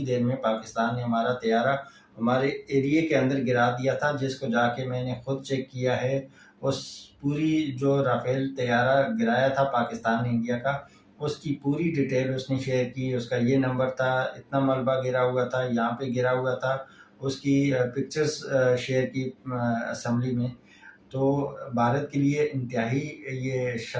دیر میں پاکستان نے ہمارا طیارہ ہمارے ایریے کے اندر گرا دیا تھا، جس کو جا کے میں نے خود چیک کیا ہے۔ اس پوری جو رافیل طیارہ گرایا تھا پاکستان نے انڈیا کا، اس کی پوری ڈیٹیل اس نے شیئر کی، اس کا یہ نمبر تھا، اتنا ملبہ گرا ہوا تھا، یہاں پہ گرا ہوا تھا، اس کی پکچرز شیئر کی اسمبلی میں۔ تو بھارت کے لیے انتہائی یہ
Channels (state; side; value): identical; both; correlation 1.00